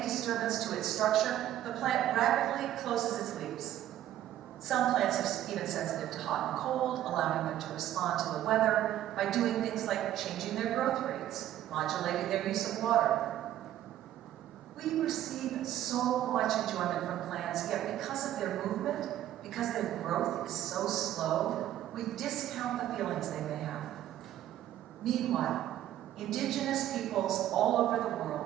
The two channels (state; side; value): quieter; left; 12.6 dB